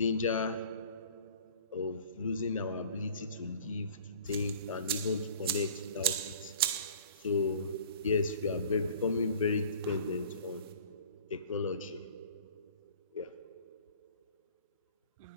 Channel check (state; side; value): inverted; both; correlation -0.46